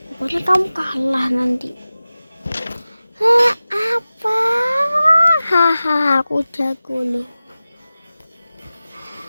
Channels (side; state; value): both; inverted; correlation -0.96